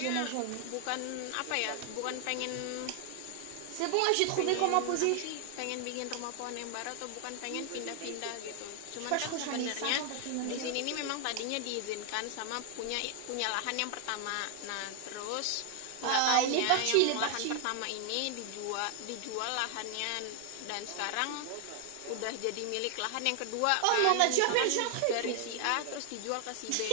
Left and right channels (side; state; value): both; different; correlation 0.00